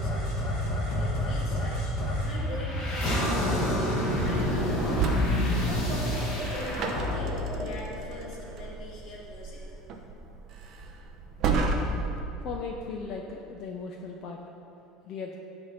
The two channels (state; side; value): normal; both; correlation 0.40